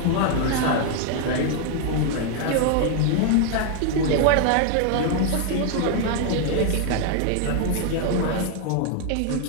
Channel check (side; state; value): both; different; correlation 0.00